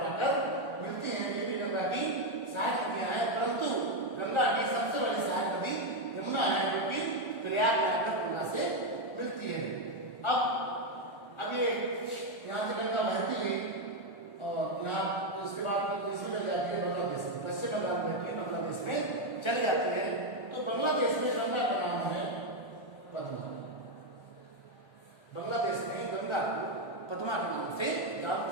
आकर मिलती हैं। ये भी गंगा की सहायक नदियां हैं, परंतु गंगा की सबसे बड़ी सहायक नदी यमुना है, जो कि प्रयाग में आकर गंगा से मिलती है। अब ये यहाँ से गंगा बहती हुई और यहाँ इसके बाद इसमें चल जाती है बांग्लादेश में, पश्चिम बंगाल में बहती हुई बांग्लादेश में चली जाती है। तो बांग्लादेश में गंगा का नाम है पद्मा। बांग्लादेश में गंगा को पद्मा के नाम से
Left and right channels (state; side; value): late; right; 1.4 ms